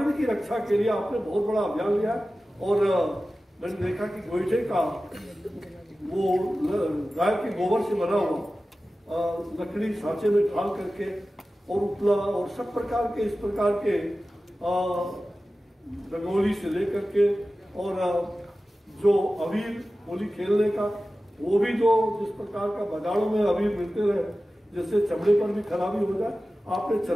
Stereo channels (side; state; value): both; normal; correlation 0.95